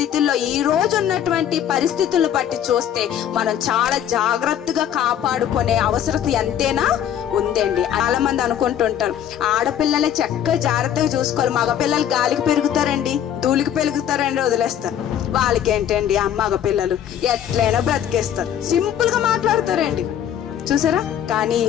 ఈ రోజు ఉన్నటువంటి పరిస్థితులను బట్టి చూస్తే మనం చాలా జాగ్రత్తగా కాపాడుకునే అవసరం ఎంతైనా ఉందండి. చాలా మంది అనుకుంటుంటారు ఆడపిల్లలే చక్కగా జాగ్రత్తగా చూసుకోవాలి, మగపిల్లలు గాలికి పెరుగుతారండి, ధూళికి పెరుగుతారండి, వదిలేస్తారు. వాళ్ళకి ఏంటండి మగ పిల్లలు ఎట్లయినా బ్రతికేస్తారు, సింపుల్ గా మాట్లాడతారండి, చూసారా. కానీ ఈ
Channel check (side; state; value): right; quieter; 10.0 dB